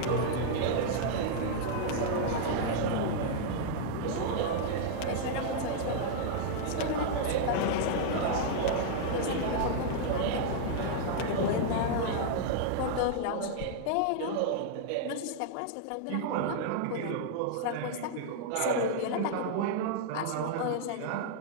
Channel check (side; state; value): both; different; correlation -0.01